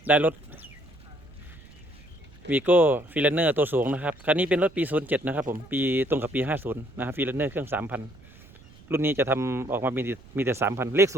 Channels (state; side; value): noise; right; rumble, 23 dB below the sound